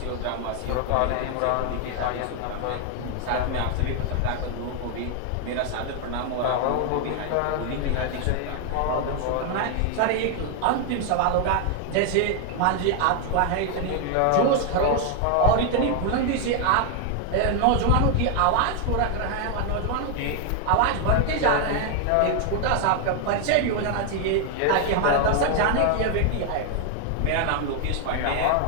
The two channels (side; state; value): both; different; correlation 0.00